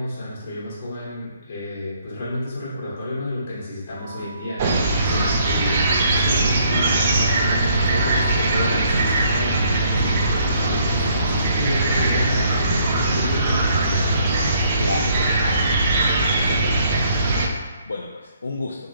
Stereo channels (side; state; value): both; inverted; correlation -0.66